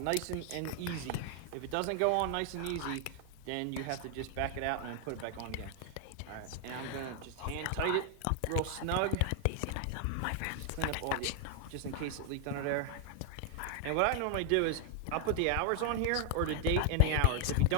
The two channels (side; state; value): both; different; correlation 0.00